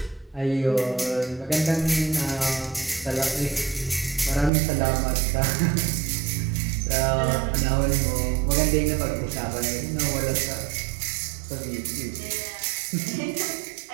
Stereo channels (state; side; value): drops out; left; at 4.5 s